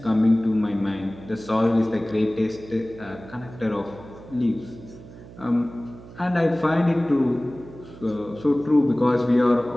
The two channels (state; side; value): noise; right; hum, 18 dB below the sound